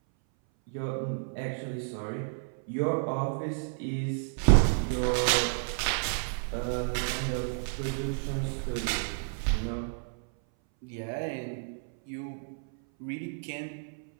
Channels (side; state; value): left; silent; 57 dB below the other